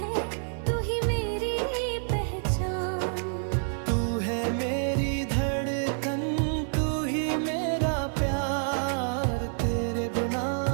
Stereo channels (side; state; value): left; silent; digital silence